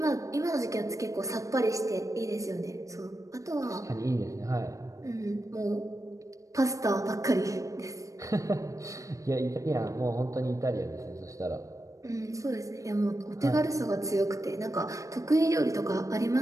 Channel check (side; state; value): left; late; 0.16 ms